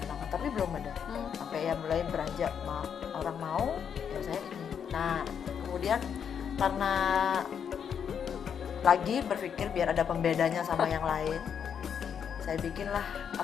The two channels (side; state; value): right; quieter; 7.7 dB